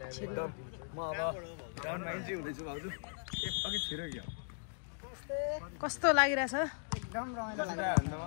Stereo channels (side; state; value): right; silent; 53 dB below the other